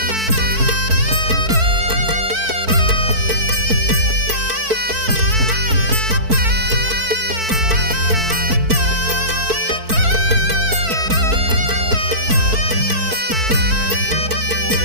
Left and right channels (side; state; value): left; late; 4.5 ms